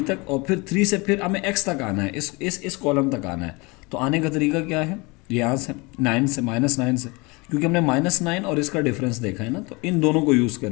तक, और फिर 3 से फिर हमें x तक आना है, इस कॉलम तक आना है। तो आने का तरीका क्या है, यहाँ से 9 से -9 से, क्योंकि हमने -9 और इसका डिफरेंस देखा है ना, तो इन दोनों को यूज़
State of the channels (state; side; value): quieter; right; 26.5 dB